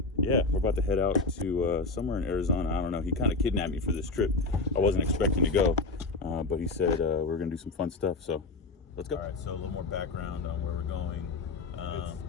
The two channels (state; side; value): quieter; right; 3.7 dB